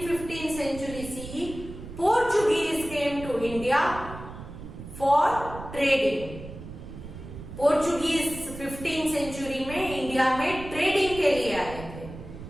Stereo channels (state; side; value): noise; right; rumble, 12 dB below the sound